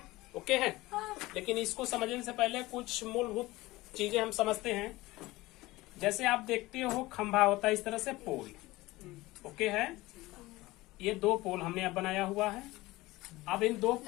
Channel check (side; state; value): right; quieter; 19.5 dB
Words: ओके है, लेकिन इसको समझने से पहले कुछ मूलभूत चीजें हम समझते हैं। जैसे आप देखते हो खंभा होता है इस तरह से पोल। ओके है, ये 2 पोल हमने अब बनाया हुआ है। अब इन 2